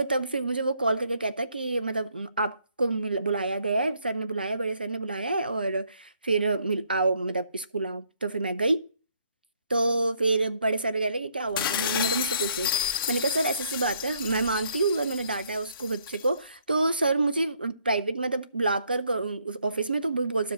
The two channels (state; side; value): inverted; both; correlation -0.69